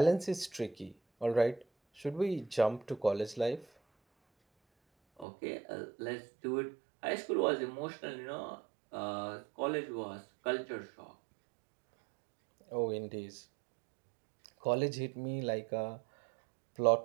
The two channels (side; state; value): left; drops out; at 5.2 s